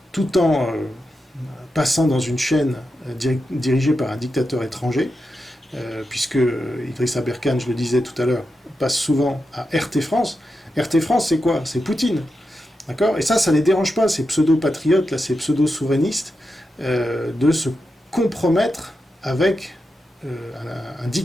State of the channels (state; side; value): normal; both; correlation 0.88